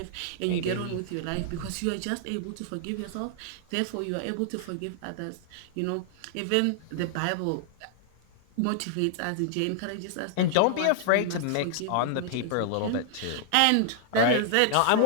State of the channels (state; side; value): different; both; correlation -0.01